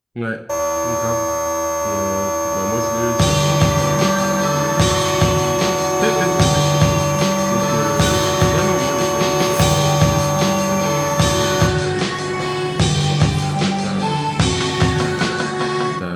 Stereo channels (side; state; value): both; identical; correlation 1.00